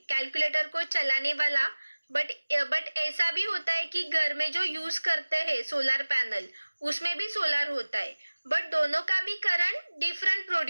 कैलकुलेटर को चलाने वाला. बट ऐसा भी होता है कि घर में जो यूज करते हैं सोलर पैनल, उसमें भी सोलर होता है, बट दोनों का भी करंट डिफरेंट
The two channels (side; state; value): both; inverted; correlation -1.00